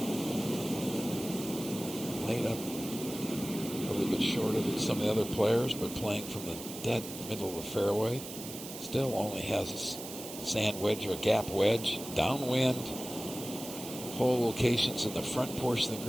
Laid up a little bit shorter than some of the other players, but playing from the dead middle of the fairway. Still only has a sand wedge or a gap wedge. Downwind. Hole locations in the front portion of the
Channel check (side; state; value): right; noise; hiss, 11 dB below the sound